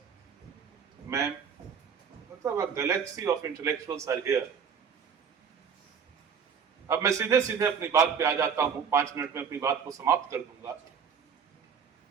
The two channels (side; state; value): left; quieter; 6.8 dB